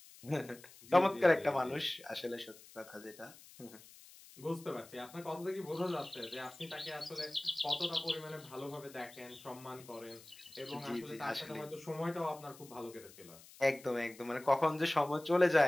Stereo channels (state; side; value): noise; left; hiss, 20 dB below the sound